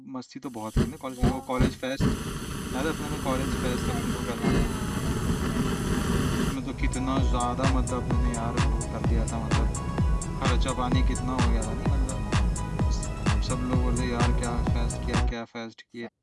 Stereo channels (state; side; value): identical; both; correlation 1.00